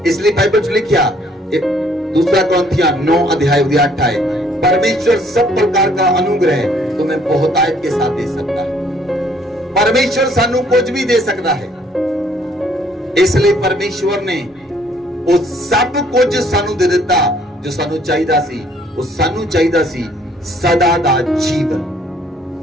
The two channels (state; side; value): normal; both; correlation 0.62